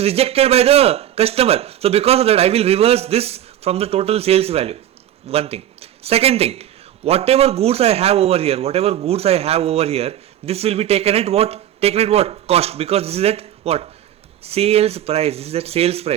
rejected by the customer. So because of that, I will reverse this from the total sales value. One thing. Second thing, whatever goods I have over here, this will be taken at what? Taken at what? Cost. Because this is at what? Sales price. This is at sales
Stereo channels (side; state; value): left; quieter; 11.6 dB